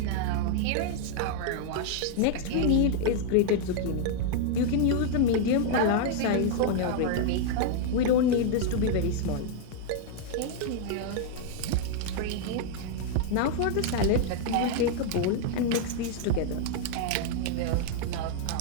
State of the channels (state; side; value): different; both; correlation 0.00